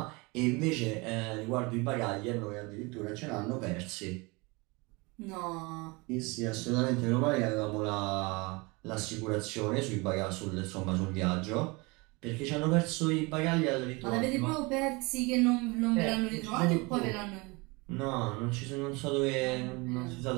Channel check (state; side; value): quieter; left; 26.4 dB